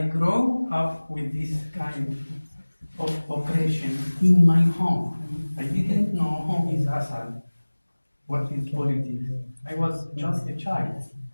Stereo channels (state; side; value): inverted; both; correlation -1.00